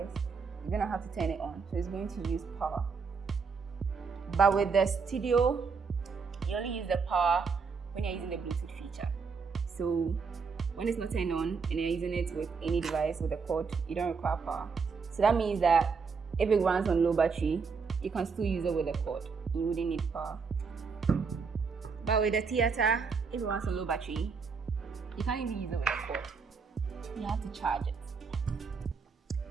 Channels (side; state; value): left; quieter; 5.2 dB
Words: you're going to have to turn it on, so it's going to use power. But with the Studio, you only use the power when you're using the Bluetooth feature. So when it's not turned on and you're using it with any device with a cord, you don't require power. So that means that if it runs on low battery, you can still use it with a cord. You wouldn't need power. But with the Theater, if it runs on low battery, you can't even use it with a cord. You have to charge it.